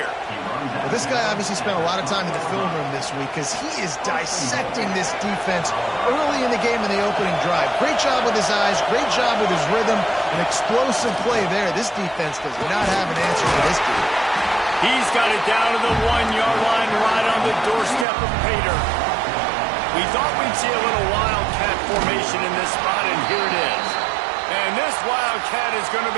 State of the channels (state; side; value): drops out; left; at 18.1 s